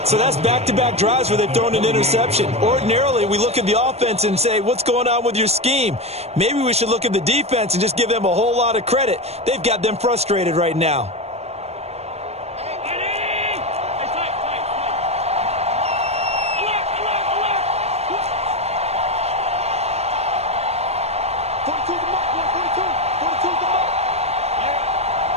So that's back-to-back drives where they've thrown an interception. Ordinarily, we look at the offense and say, what's going on with your scheme? Maybe we should look at the defense and just give them a whole lot of credit. They've got them frustrated right now.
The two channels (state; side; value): late; left; 0.31 ms